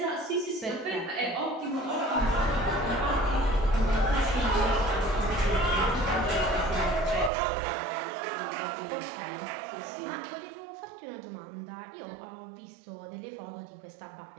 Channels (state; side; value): drops out; left; at 7.3 s